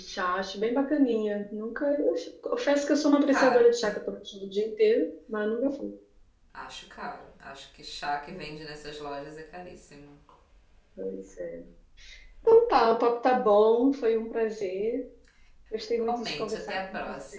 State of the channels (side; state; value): both; identical; correlation 1.00